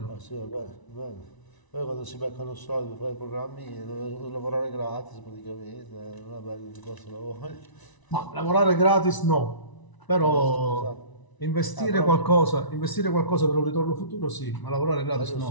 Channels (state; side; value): late; right; 1.0 ms